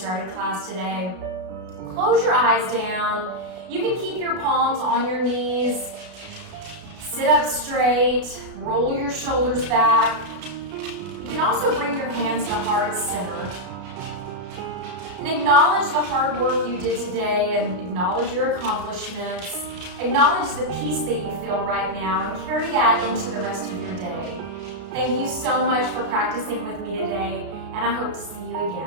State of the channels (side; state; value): left; late; 33 ms